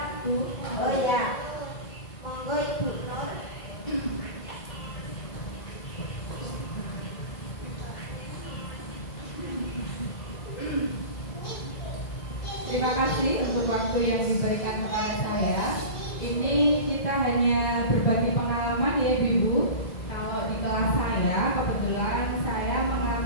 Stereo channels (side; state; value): right; late; 2.0 ms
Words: Bu. Oh ya, monggo Ibu Nur. Terima kasih untuk waktu yang diberikan kepada saya. Ini kita hanya berbagi pengalaman ya Ibu. Kalau di kelas saya, kebetulan saya